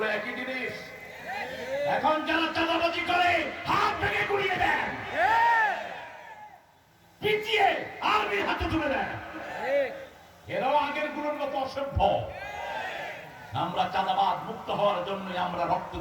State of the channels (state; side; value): identical; both; correlation 1.00